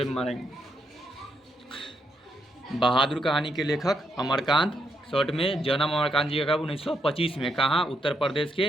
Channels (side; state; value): both; normal; correlation 0.79